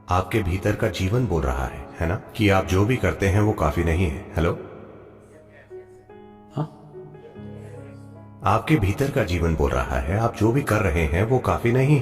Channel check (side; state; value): both; identical; correlation 1.00